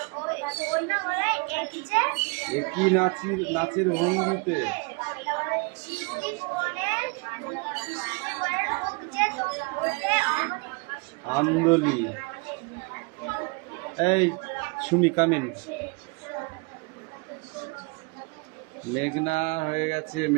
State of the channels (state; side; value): quieter; left; 31.4 dB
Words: একই নাচের ভঙ্গিতে, আন্দোলি। এই সুমি কামিন। মেঘনা হয়ে গেছে,